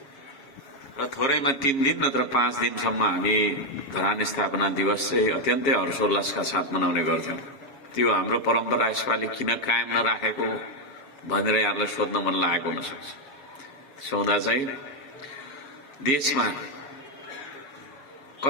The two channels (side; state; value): right; late; 7.3 ms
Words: र थोरैमा 3 दिन नत्र 5 दिनसम्म हामी धरान स्थापना दिवस चाहिँ अत्यन्तै हर्षोल्लासका साथ मनाउने गर्थ्यौं। त्यो हाम्रो परम्परा यसपालि किन कायम नराखेको भनेर यहाँलाई सोध्न मन लागेको हुन सक्छ। सौदा चाहिँ देशमा